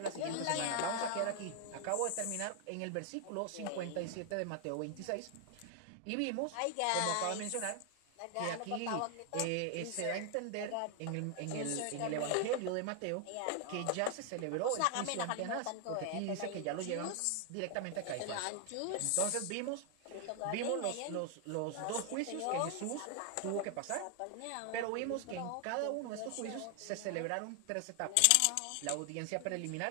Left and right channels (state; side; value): different; both; correlation 0.00